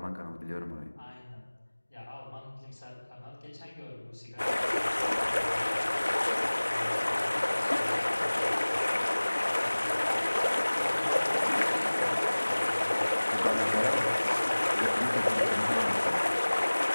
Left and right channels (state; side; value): inverted; both; correlation -1.00